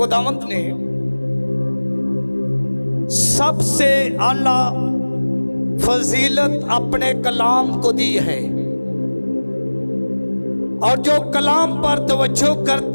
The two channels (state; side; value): inverted; both; correlation -1.00